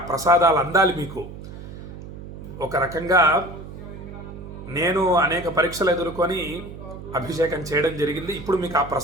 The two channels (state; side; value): noise; right; hum, 12 dB below the sound